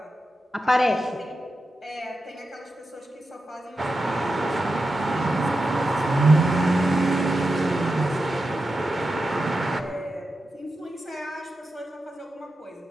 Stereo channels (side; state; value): both; normal; correlation 0.90